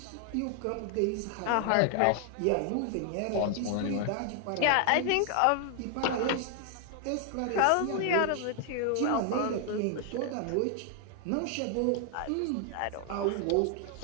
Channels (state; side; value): different; both; correlation 0.00